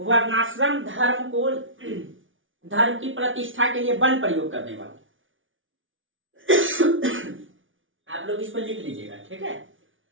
धर्म को, धर्म की प्रतिष्ठा के लिए बल प्रयोग करने वाला, आप लोग इसको लिख लीजिएगा, ठीक है।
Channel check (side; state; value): left; late; 0.57 ms